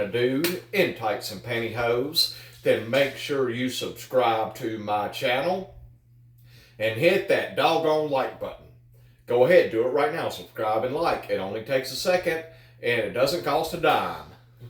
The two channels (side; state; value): both; identical; correlation 1.00